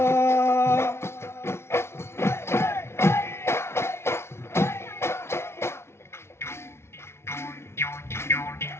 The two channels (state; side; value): late; right; 0.12 ms